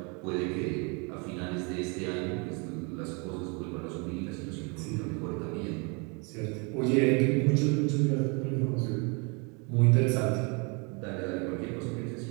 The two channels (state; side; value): quieter; left; 32.5 dB